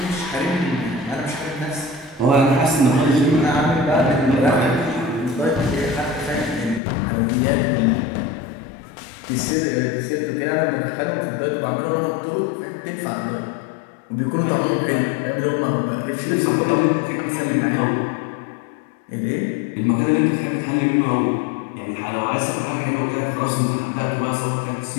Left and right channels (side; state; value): right; drops out; at 6.8 s